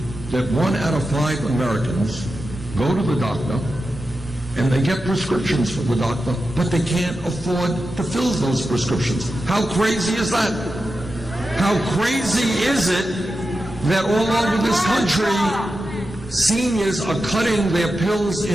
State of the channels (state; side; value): normal; both; correlation 0.91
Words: that 1 out of 5 Americans go to the doctor and they get prescriptions from the doctor, but they can't afford to fill those prescriptions? How crazy is that? How crazy is it that all over this country, seniors are cutting their pills